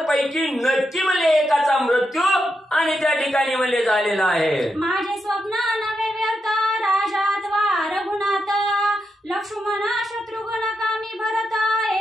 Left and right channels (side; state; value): both; normal; correlation 0.84